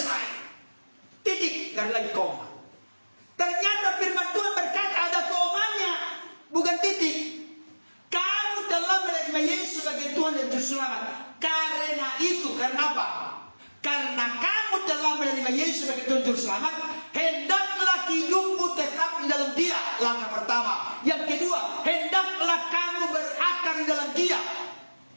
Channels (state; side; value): inverted; both; correlation -1.00